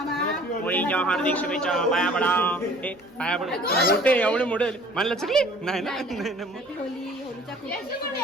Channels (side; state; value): both; normal; correlation 0.51